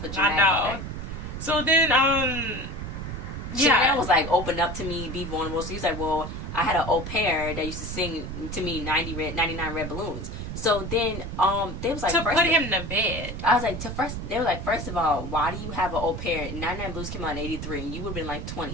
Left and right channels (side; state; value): right; noise; rumble, 6 dB below the sound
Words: dramatic. I know. So then, Chanel was like, open up to me, be vulnerable. So he's like, well, I had an au pair that used to sing to me 99 red balloons. So then, they was like, to put him to bed. I was like, they were like, first of all, why do you have an au pair? 99 Blues came out in 83, and you would have been like